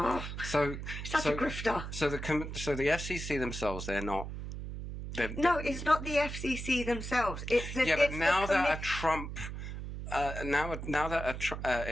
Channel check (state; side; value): noise; right; hum, 7 dB below the sound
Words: So the FCC themselves, they're not. No, it's not the FCC themselves. It's but now that a Trump,